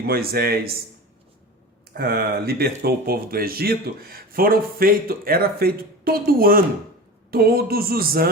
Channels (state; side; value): normal; both; correlation 0.31